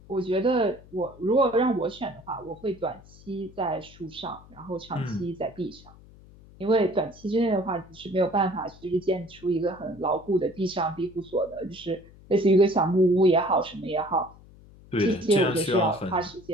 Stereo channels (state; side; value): noise; left; hum, 23 dB below the sound